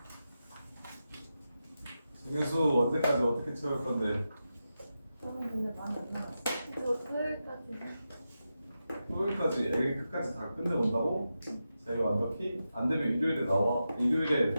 정현수 언제까지 어떻게 채울 건데? 저는 근데 많이 안 나왔어요. 저 토요일까지. 토요일까지 애기 끝까지 다 끝내본다고? 자기 완벽히? 안 되면 일요일에 나와. 일요일에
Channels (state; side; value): inverted; both; correlation -0.90